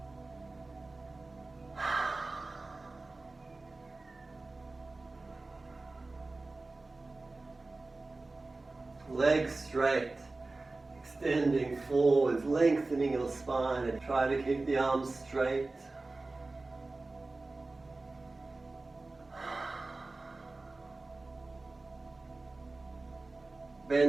Legs straight, extending forwards, lengthening your spine, and try to keep the arms straight.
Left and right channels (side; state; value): left; quieter; 3.3 dB